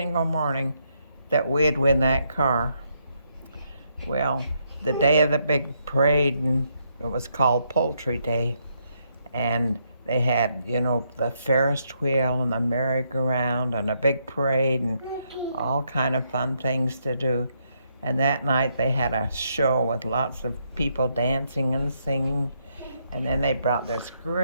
morning, that we'd win that car. Well, the day of the big parade, and it was called Poultry Day, and they had, the Ferris wheel and the merry-go-round and a big parade and all kind of fun things to do. And that night they had a show with lots of people dancing and singing. And then they brought this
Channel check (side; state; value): both; inverted; correlation -0.76